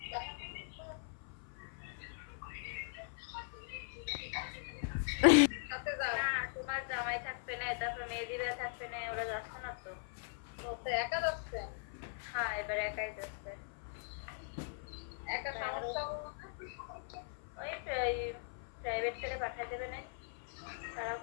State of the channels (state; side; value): silent; right; 51 dB below the other